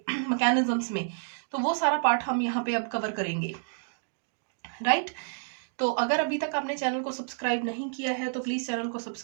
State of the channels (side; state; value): left; silent; digital silence